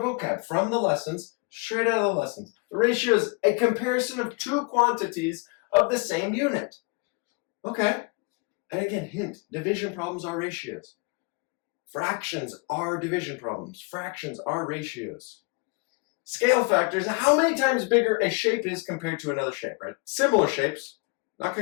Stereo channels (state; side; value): quieter; right; 30.7 dB